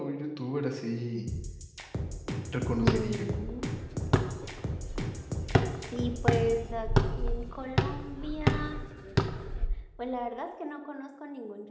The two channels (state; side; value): identical; both; correlation 1.00